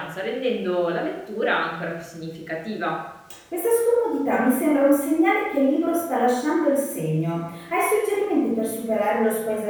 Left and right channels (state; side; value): identical; both; correlation 1.00